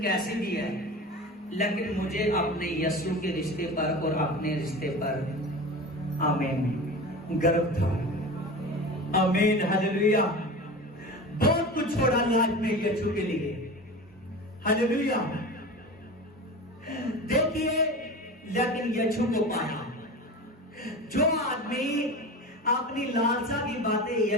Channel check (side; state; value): both; normal; correlation 0.31